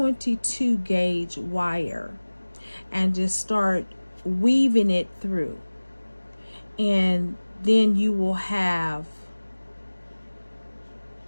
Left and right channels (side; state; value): both; inverted; correlation -1.00